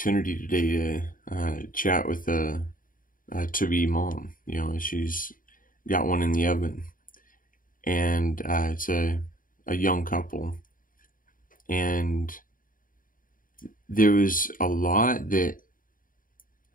today to chat with a to-be mom. She's got one in the oven, and it's a young couple. And there was a lot that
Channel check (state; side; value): late; right; 0.40 ms